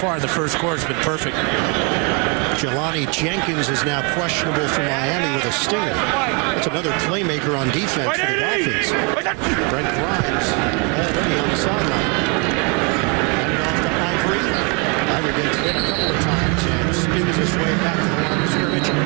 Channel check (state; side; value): quieter; left; 32.6 dB